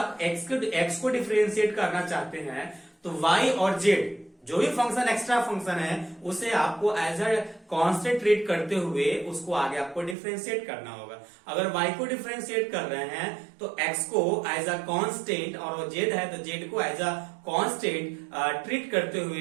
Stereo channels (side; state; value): left; drops out; at 10.2 s